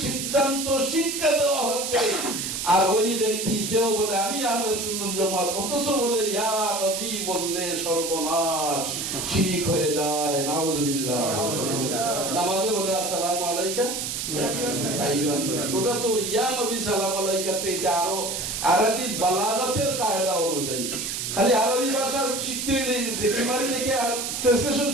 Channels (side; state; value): right; noise; hiss, 3 dB below the sound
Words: সিদ্ধান্ত শিক্ষা দেওয়া হচ্ছে। আর ওই ব্যক্তি সেও বলে আমি আহলে সুন্নাত জামাত, অথচ বলে ইয়া নবী বললে সর্বনাশ, শিরক হয়ে যায়, নাউযুবিল্লাহ। নামাজে বলে আসসালামু আলাইকা আইয়ুহান নবী, ওটা তো ইয়া নবী সালাম আলাইকা তে আরো আরবি বালাগাতের কায়দা অনুযায়ী, খালি আরবি ভাষা শিখতে দেখি দেখে ট্রান্সলেশন